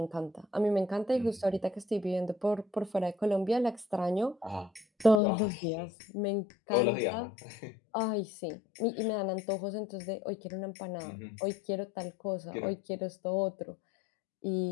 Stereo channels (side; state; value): right; drops out; at 5.2 s